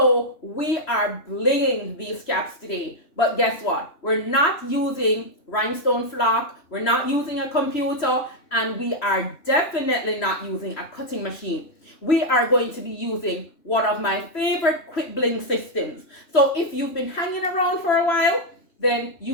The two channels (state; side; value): late; right; 3.1 ms